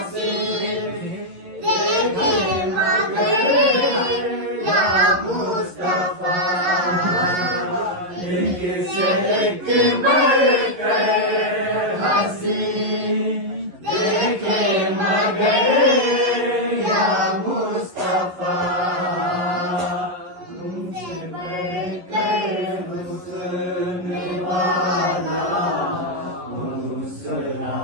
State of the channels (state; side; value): late; left; 11 ms